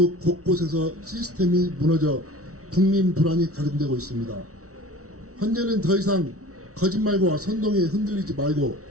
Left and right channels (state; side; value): late; left; 0.64 ms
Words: 곳곳에서 시스템이 무너져 국민 불안이 가중되고 있습니다. 현재는 더 이상 거짓말과 선동에 흔들리지 말고